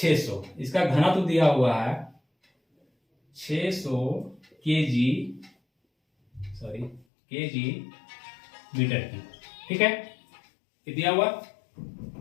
इसका घनत्व दिया हुआ है 600 केजी मीटर की, ठीक है, ये दिया हुआ।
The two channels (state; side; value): drops out; right; at 7.1 s